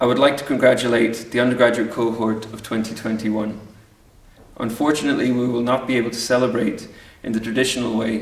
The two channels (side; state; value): both; identical; correlation 1.00